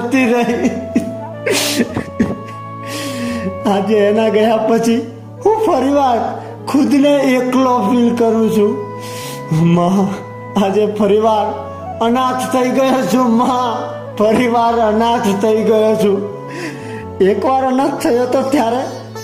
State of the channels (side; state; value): both; identical; correlation 1.00